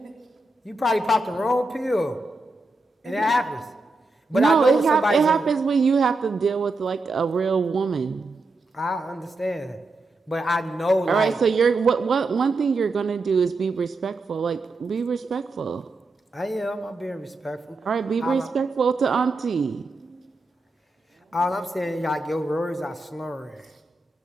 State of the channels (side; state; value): left; quieter; 3.1 dB